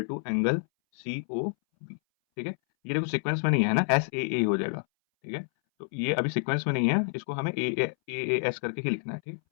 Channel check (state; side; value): silent; right; 59 dB below the other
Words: to angle COB, ठीक है। ये देखो सीक्वेंस में नहीं है ना, SAA हो जाएगा, ठीक है। तो ये अभी सीक्वेंस में नहीं है, इसको हमें AAS करके ही लिखना है, ठीक।